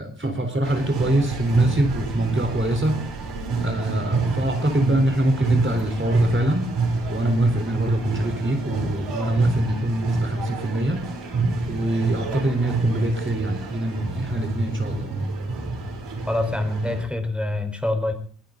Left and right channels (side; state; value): both; normal; correlation 0.77